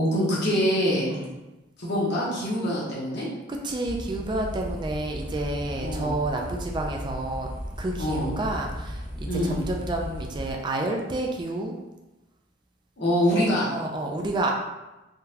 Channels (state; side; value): normal; both; correlation 0.53